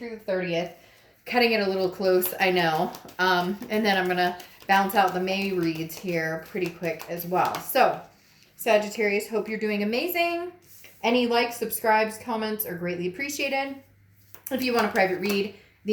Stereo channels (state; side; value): identical; both; correlation 1.00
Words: the 30th. Cutting it a little close, I know. And then I'm going to bounce out the May reads here pretty quick as well. So, Sagittarius, hope you're doing amazing. Any likes, subscribes, comments are greatly appreciated. If you want a private read,